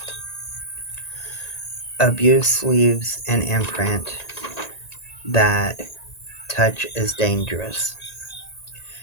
Abuse leaves an imprint that touch is dangerous.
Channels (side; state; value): right; late; 1.9 ms